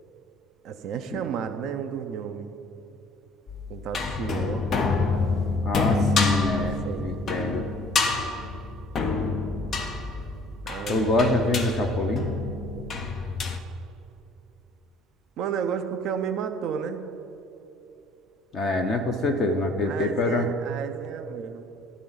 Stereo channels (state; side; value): normal; both; correlation 0.55